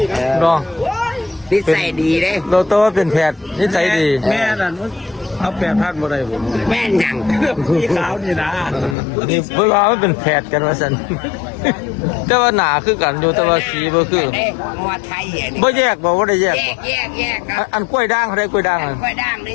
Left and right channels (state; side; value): drops out; right; at 9.0 s